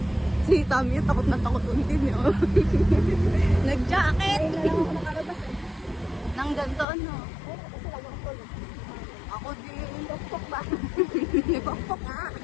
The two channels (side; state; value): right; drops out; at 6.9 s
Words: Si Tommy, takot na takot untin yun. Nag-jacket! Nang ganito ano? Ako din, pokpok ba? Pokpok nga.